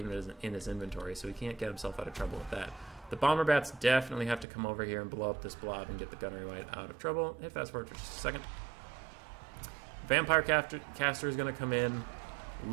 in his inventory, so he can't get himself out of trouble with that. The Bomber Bats definitely have to come over here and blow up this blob and get the Gunnery White out of trouble. Hit fast forward for just a second. Vampire Caster is going to come in.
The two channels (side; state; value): left; drops out; at 4.5 s